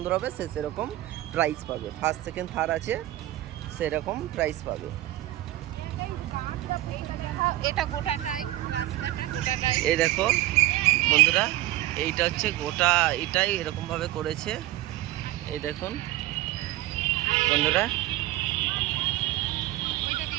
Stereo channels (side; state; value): left; quieter; 15.9 dB